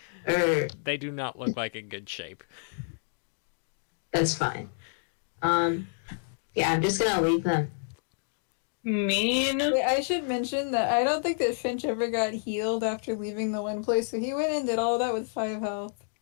Or They do not look like in good shape. that's fine. Yeah, I'm just gonna leave them. Mean. Wait, I should mention that I don't think that Finch ever got healed after leaving the one place, so he went and did all that with 5 health.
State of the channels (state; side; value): silent; right; digital silence